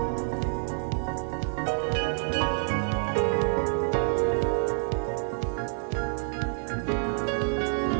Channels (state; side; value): silent; left; 58 dB below the other